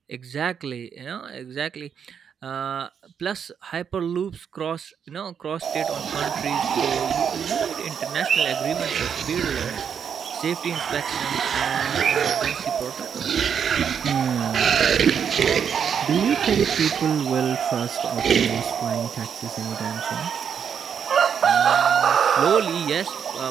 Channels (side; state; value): left; quieter; 7.5 dB